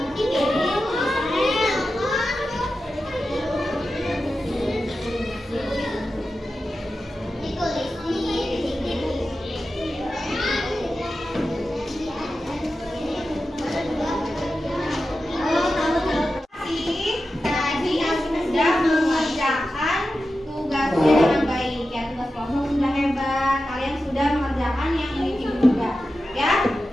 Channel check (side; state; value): both; normal; correlation 0.92